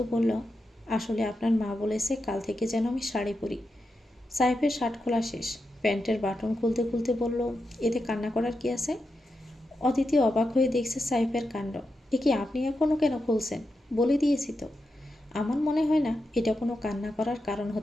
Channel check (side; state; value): both; normal; correlation 0.88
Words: বলল, আসলে আপনার মা বলেছে কাল থেকে যেন আমি শাড়ি পরি। সাহেবের শার্ট খোলা শেষ, প্যান্টের বাটন খুলতে খুলতে বলল, এতে কান্না করার কি আছে? অদিতি অবাক হয়ে দেখছে সাহেবের কাণ্ড। এ কি, আপনি এখনও কেন খুলছেন? বলে দিয়েছি তো। আমার মনে হয় না এটা কোনো কান্না করার কারণ